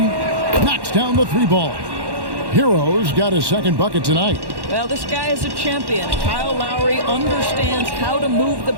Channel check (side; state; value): left; late; 1.1 ms